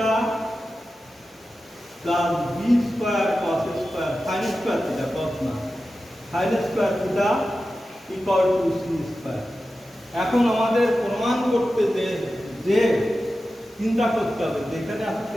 plus b square cos square sin square theta cos না sin square theta equal to c square। এখন আমাদের প্রমাণ করতে যে চিন্তা করতে হবে যেখানে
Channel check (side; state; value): both; normal; correlation 0.93